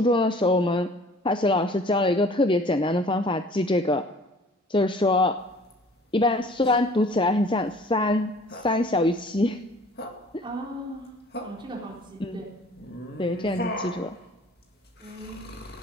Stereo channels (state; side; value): normal; both; correlation 0.51